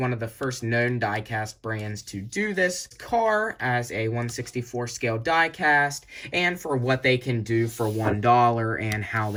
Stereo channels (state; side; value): identical; both; correlation 1.00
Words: of the first known diecast brands to do this car as a 1/64 scale diecast, and for what they can do for $1 and how